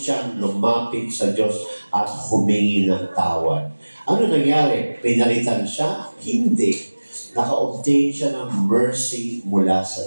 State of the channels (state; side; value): inverted; both; correlation -1.00